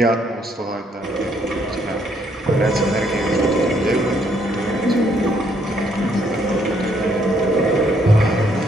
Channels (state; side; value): normal; both; correlation 0.69